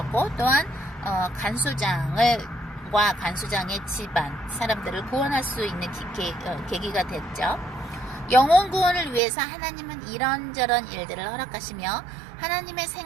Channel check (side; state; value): left; drops out; at 9.2 s